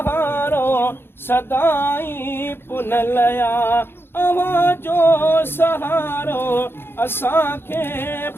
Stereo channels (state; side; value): late; right; 0.11 ms